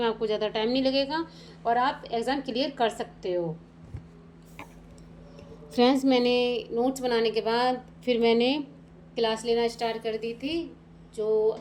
आपको ज़्यादा टाइम नहीं लगेगा और आप एग्ज़ाम क्लियर कर सकते हो। फ्रेंड्स, मैंने नोट्स बनाने के बाद फिर मैंने क्लास लेना स्टार्ट कर दी थी, जो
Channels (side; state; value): both; identical; correlation 1.00